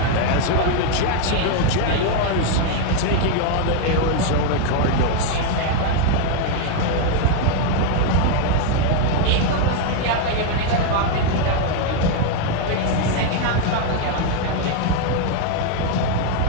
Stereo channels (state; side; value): different; both; correlation 0.01